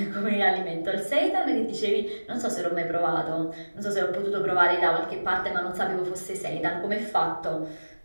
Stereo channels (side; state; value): both; inverted; correlation -1.00